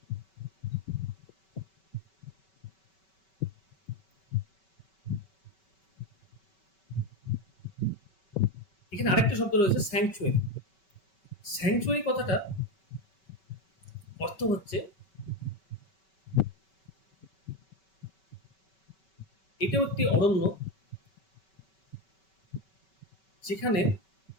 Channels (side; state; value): right; late; 5.3 ms